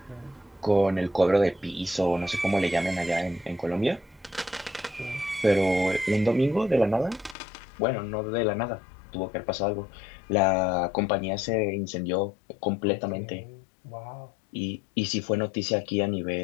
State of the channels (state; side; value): drops out; right; at 7.4 s